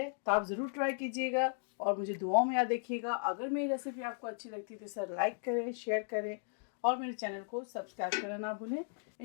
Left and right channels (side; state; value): right; silent; digital silence